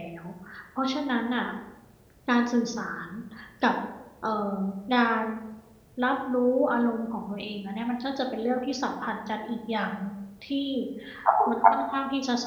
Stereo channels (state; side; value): identical; both; correlation 1.00